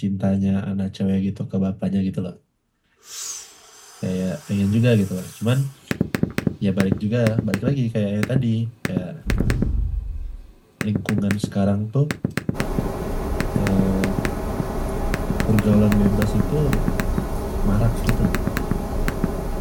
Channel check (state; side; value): identical; both; correlation 1.00